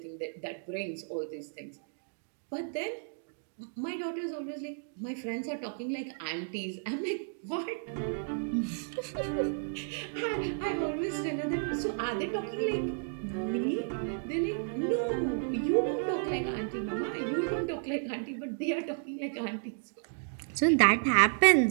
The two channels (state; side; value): silent; left; digital silence